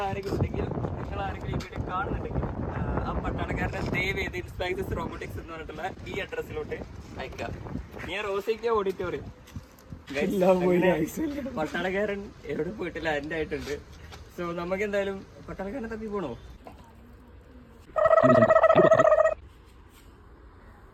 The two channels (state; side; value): identical; both; correlation 1.00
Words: ആരെങ്കിലും ഉണ്ടെങ്കിൽ, നിങ്ങൾ ആരെങ്കിലും ഈ വീഡിയോ കാണുന്നുണ്ടെങ്കിൽ ആ പട്ടാളക്കാരനെ ദയവ് ചെയ്ത് ഇൻസ്പൈസസ് റോബോട്ടിക്സ് എന്ന് പറഞ്ഞിട്ടുള്ള ഈ അഡ്രസ്സിലോട്ട് അയക്കാം. ഞാൻ റോസിക്ക ഓഡിറ്റോറിയം. പട്ടാളക്കാരൻ എവിടെ പോയിട്ടില്ല, എൻ്റെ ആയിട്ടുണ്ട്. സോ നമുക്ക് എന്തായാലും പട്ടാളക്കാരനെ തപ്പി പോണോ?